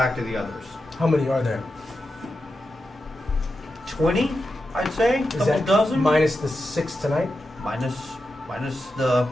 to the others." how many are there? 20, I'd say, Is couple that dozen. minus the 6 tonight? Minus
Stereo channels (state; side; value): normal; both; correlation 0.89